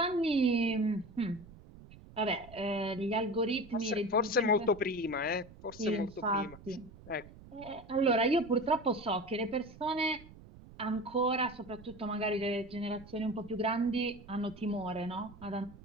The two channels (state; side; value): noise; right; rumble, 19 dB below the sound